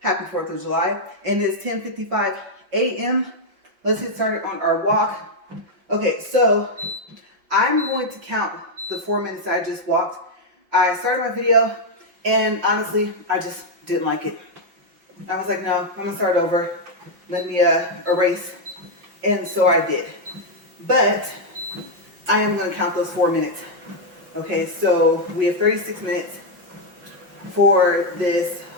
Happy 4th of July. And it's 10:55 a.m. Let's get started on our walk. Okay, so I'm going to count the 4 minutes I just walked. I started my video, and honestly, I just didn't like it. I was like, no, I'm going to start over. Let me erase. And so I did. But I am going to count those 4 minutes. Okay, so we have 36 minutes for this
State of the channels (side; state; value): left; late; 5.7 ms